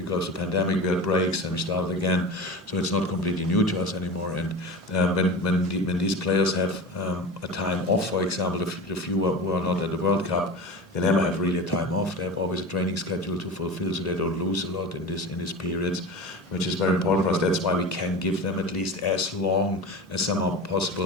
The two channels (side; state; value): both; normal; correlation 0.31